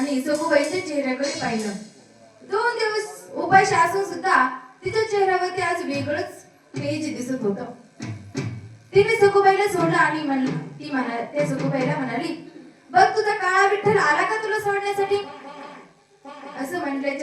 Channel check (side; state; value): both; identical; correlation 1.00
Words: सखूबाईच्या चेहऱ्याकडे पाहिलं. 2 दिवस उपाशी असून सुद्धा तिच्या चेहऱ्यावरती आज वेगळंच तेज दिसत होतं. तिने सखूबाईला सोडलं आणि त्या सखूबाईला म्हणाली बघ तुझा काळा विठ्ठल आला का तुला सोडण्यासाठी. असं